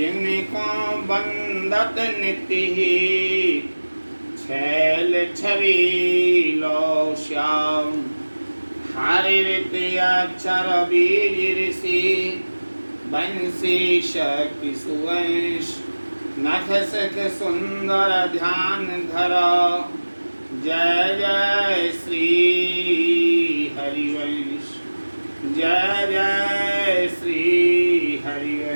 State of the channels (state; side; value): inverted; both; correlation -1.00